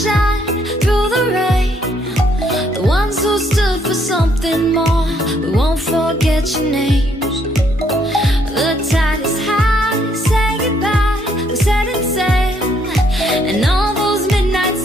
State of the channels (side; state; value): both; normal; correlation 0.69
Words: through the rain, the ones who stood for something more. We won't forget your names. The tide is high, say goodbye, we're setting sail, and all those midnight